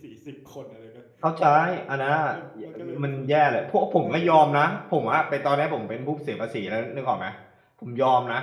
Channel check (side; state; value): both; identical; correlation 1.00